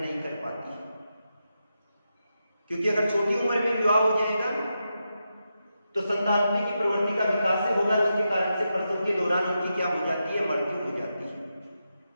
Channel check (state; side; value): inverted; both; correlation -0.87